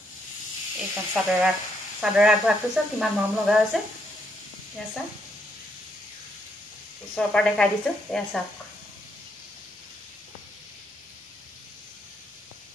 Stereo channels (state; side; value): normal; both; correlation 0.75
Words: এইখন চাদৰ আগভাগটো চাওক কিমান মৰম লগা হৈছে। এয়া চাওক ওচৰৰ পৰা দেখাই দিছোঁ, এয়া চাওক